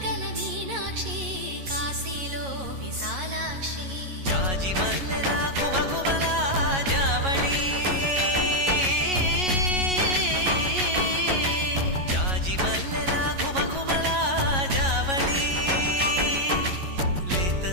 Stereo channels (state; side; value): late; left; 11 ms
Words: మీనాక్షి కాశీలో విశాలాక్షి జాజి మల్లెలా గుమగుమలా జావళి జాజి మల్లెలా గుమగుమలా జావళి లేత